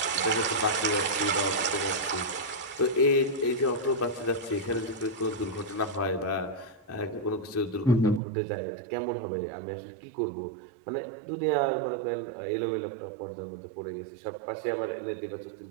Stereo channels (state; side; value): drops out; left; at 8.2 s